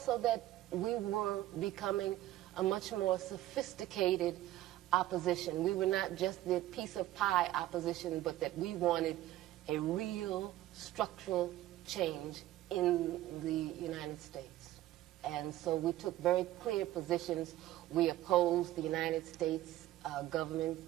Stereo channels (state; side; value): quieter; left; 14.8 dB